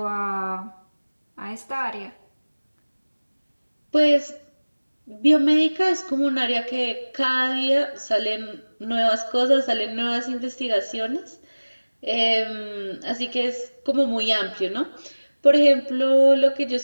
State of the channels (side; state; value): both; inverted; correlation -1.00